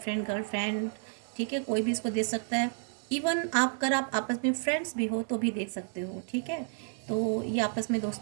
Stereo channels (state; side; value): silent; left; 57 dB below the other